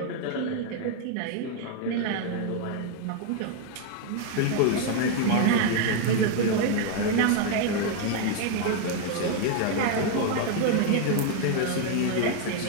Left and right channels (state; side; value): different; both; correlation 0.00